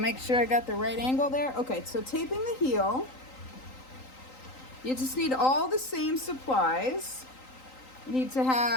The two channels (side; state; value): right; late; 3.9 ms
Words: make sure I got the right angle there. Okay, so taping the heel, you just need all the same supplies. You need to